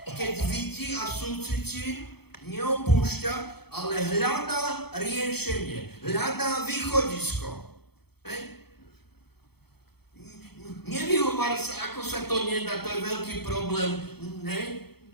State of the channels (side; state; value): right; late; 0.96 ms